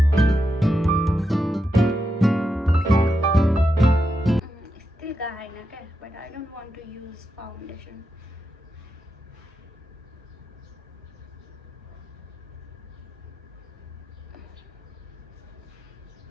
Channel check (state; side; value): normal; both; correlation 0.86